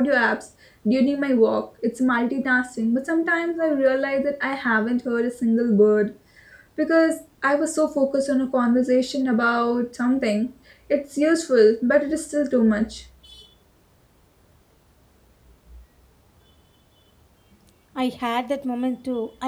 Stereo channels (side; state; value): both; identical; correlation 1.00